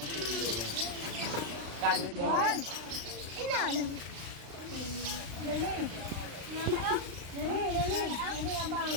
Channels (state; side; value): late; left; 35 ms